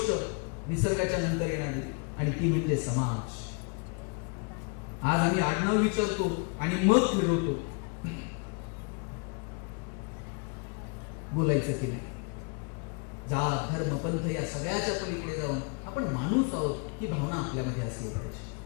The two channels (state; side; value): quieter; right; 35.5 dB